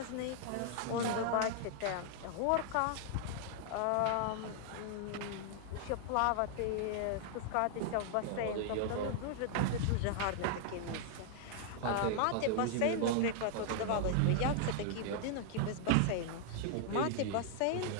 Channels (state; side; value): different; both; correlation 0.00